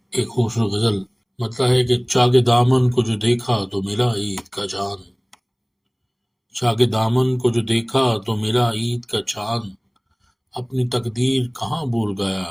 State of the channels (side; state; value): both; identical; correlation 1.00